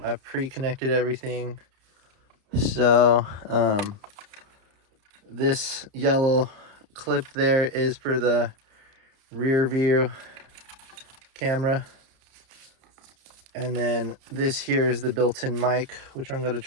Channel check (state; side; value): late; left; 30 ms